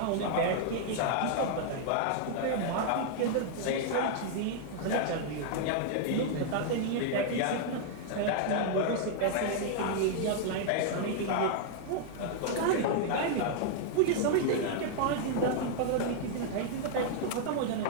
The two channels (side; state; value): both; different; correlation -0.01